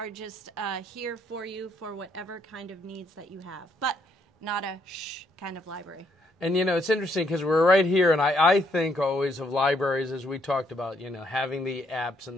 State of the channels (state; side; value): normal; both; correlation 0.71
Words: just here for you for whatever kind of needs that you have, but not a shh kind of library. And, you know, it's interesting because we're right here, and I think always of libraries as we talked about, you know, having the apps